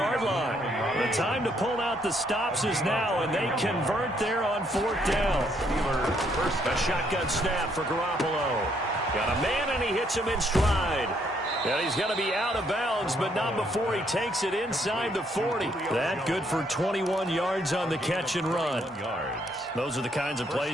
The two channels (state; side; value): normal; both; correlation 0.71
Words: line. The time to pull out the stops is now, and they convert there on 4th down. A shotgun snap for Garoppolo. Got a man, and he hits him in stride. And he's going to be out of bounds, but not before he takes it inside the 40. That good for 21 yards on the catch and run. Those are the kinds of